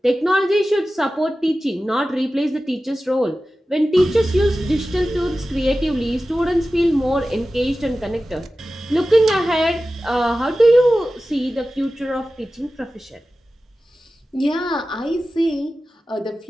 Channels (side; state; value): both; normal; correlation 0.95